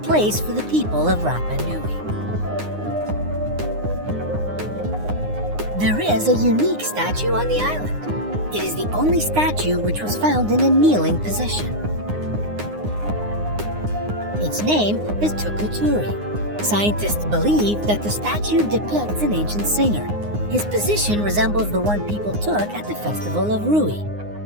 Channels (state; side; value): late; left; 9.7 ms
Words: place for the people of Rapa Nui. There is a unique statue on the island. It is the only statue which was found in a kneeling position. Its name is Tukuturi. Scientists believe that the statue depicts an ancient singer. His position resembles the one people took at the festival of Rui.